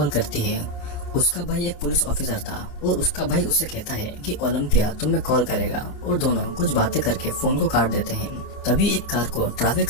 करती है। उसका भाई एक पुलिस ऑफिसर था और उसका भाई उससे कहता है कि ओलंपिया तुम्हें कॉल करेगा, और दोनों कुछ बातें करके फोन को काट देते हैं। तभी एक कार को ट्रैफिक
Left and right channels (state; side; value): late; right; 27 ms